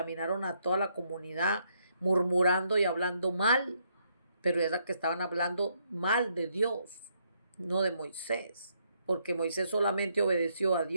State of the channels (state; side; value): inverted; both; correlation -0.74